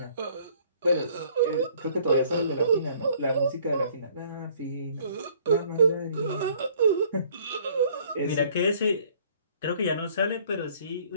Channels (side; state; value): both; inverted; correlation -0.58